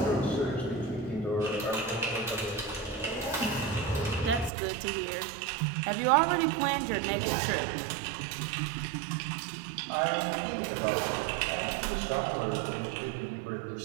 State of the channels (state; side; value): drops out; left; at 4.5 s